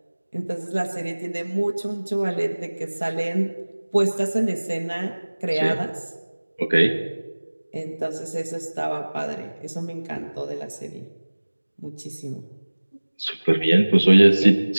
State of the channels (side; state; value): both; inverted; correlation -1.00